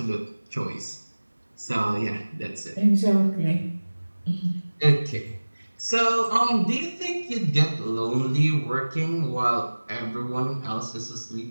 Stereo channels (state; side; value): inverted; both; correlation -1.00